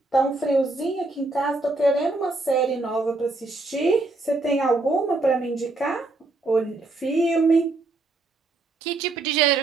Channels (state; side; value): quieter; left; 3.2 dB